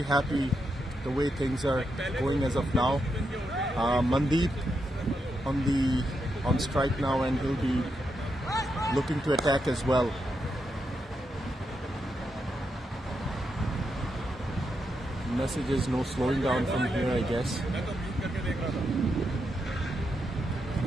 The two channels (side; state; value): both; normal; correlation 0.83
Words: happy the way things are going as of now. Mandeep on strike now, and he'll be looking to attack as well. Message is no slowing down from here, I guess.